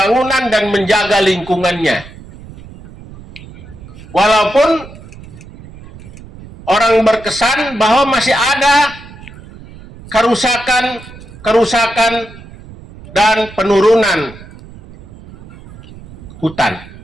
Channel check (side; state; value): right; noise; rumble, 18 dB below the sound